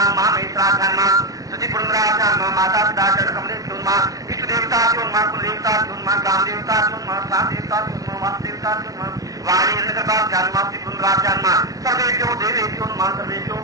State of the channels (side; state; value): left; late; 0.18 ms